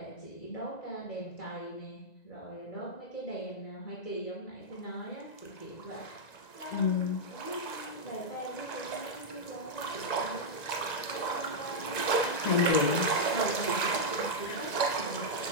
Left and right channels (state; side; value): late; right; 1.9 ms